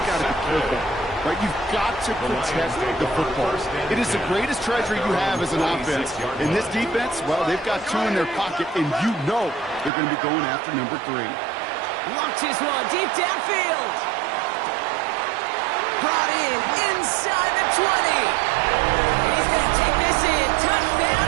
got to be careful. Right? You've got to protect the football. It is the greatest treasure you have as an offense. In this defense, well, they've got 2 in their pocket, and you know they're going to be going after number 3. Launches one deep downfield. Brought in inside the 20. And he's going to take this in. Touchdown,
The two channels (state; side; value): drops out; left; at 9.9 s